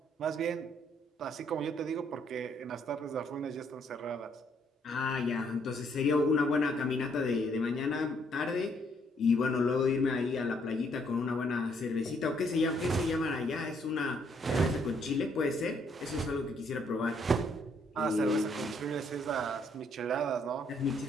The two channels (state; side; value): normal; both; correlation 0.69